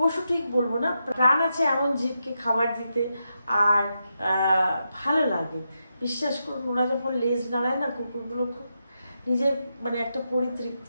ঠিক বলবো না, প্রাণ আছে এমন জীবকে খাবার দিতে আর ভালো লাগে। বিশ্বাস করুন, ওরা যখন লেজ নাড়ায় না, কুকুরগুলো খুব নিজের একটা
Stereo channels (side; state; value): both; inverted; correlation -0.85